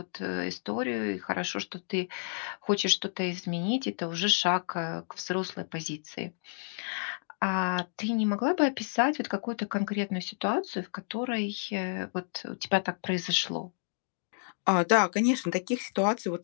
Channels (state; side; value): silent; right; digital silence